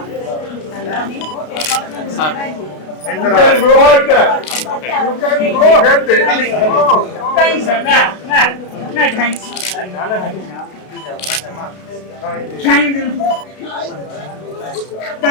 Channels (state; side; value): late; right; 32 ms